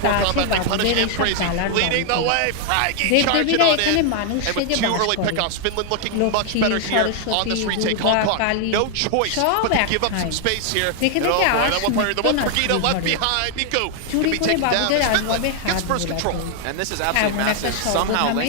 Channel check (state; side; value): different; both; correlation 0.00